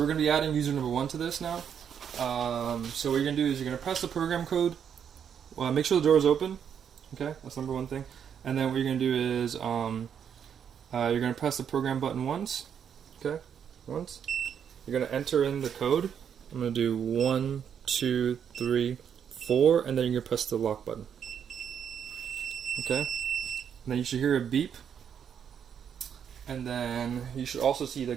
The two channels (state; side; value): quieter; left; 8.1 dB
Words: we're gonna be adding user number 1 to this now. So what you're gonna do is you're gonna press the program code. Well, make sure the door is open. Okay, that's number 1 thing. And then what you're gonna do is you're gonna press the program button once. Okay, once. You're gonna enter in the code. I'm gonna do 1, 2, 3, 4, and then you're gonna press the lock button. Okay, and then you should hear a beep, and then you should also see the